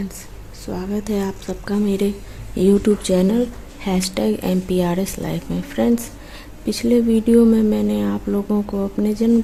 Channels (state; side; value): identical; both; correlation 1.00